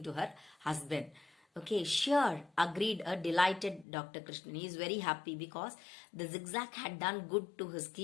to her husband. Okay, sure, agreed a delighted Dr. Krishnan. He is very happy because the Zigzag had done good to his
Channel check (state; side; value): drops out; right; at 3.9 s